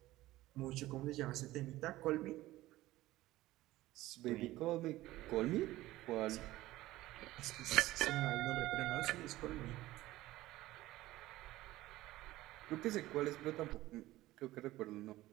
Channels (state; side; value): quieter; left; 16.8 dB